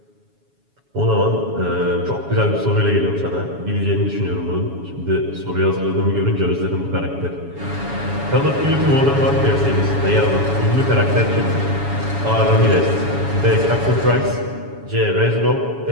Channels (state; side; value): late; left; 7.1 ms